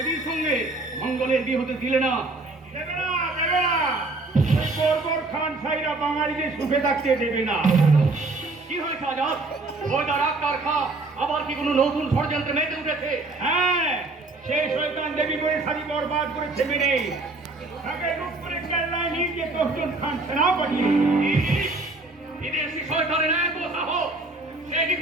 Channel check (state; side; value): quieter; left; 3.2 dB